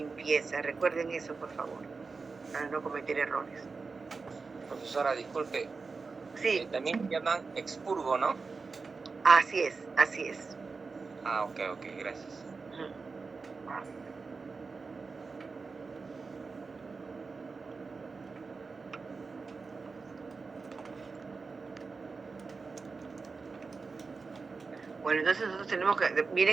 Recuerden eso, por favor, para no cometer errores. Profesora, disculpe. Sí. También llaman expurgo, ¿no? Así es, así es. Ah, ok, gracias. Bueno, entonces nosotros tenemos que,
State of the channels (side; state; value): left; quieter; 4.4 dB